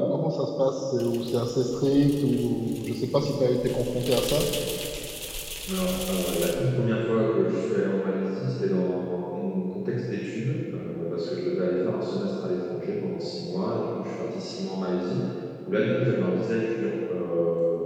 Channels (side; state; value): both; identical; correlation 1.00